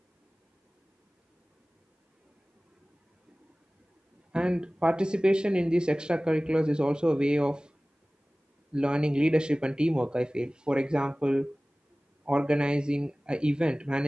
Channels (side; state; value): both; normal; correlation 0.98